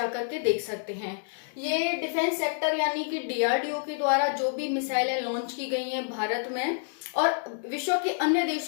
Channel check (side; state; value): right; silent; digital silence